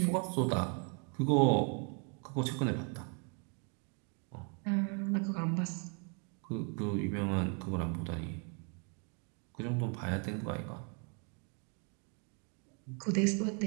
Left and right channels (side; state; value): left; quieter; 38.0 dB